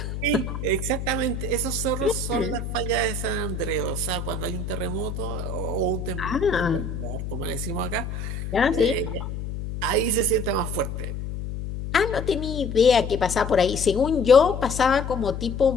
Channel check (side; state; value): left; noise; hum, 6 dB below the sound